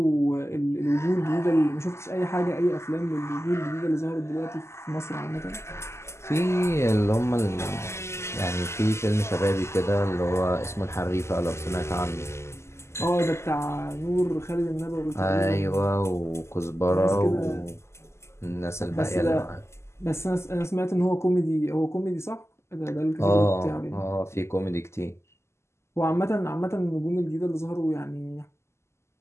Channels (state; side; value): late; right; 0.13 ms